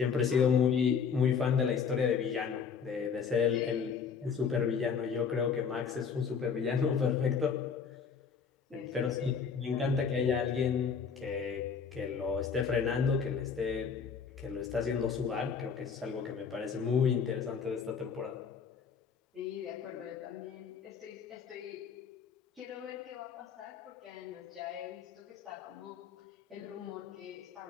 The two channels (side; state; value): right; quieter; 6.3 dB